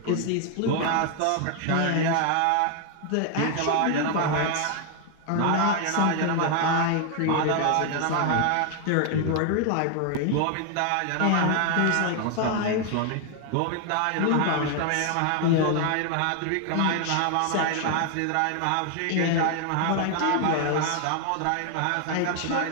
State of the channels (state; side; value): different; both; correlation 0.00